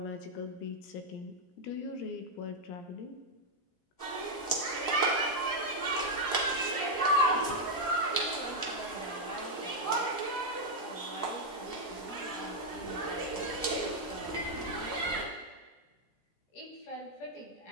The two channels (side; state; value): right; late; 17 ms